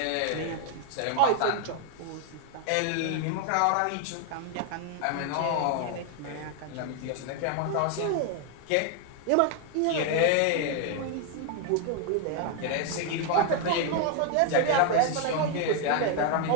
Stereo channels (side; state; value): both; different; correlation 0.01